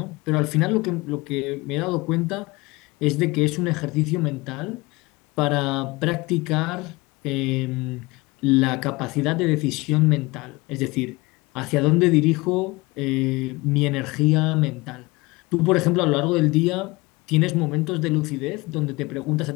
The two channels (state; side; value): quieter; right; 23.1 dB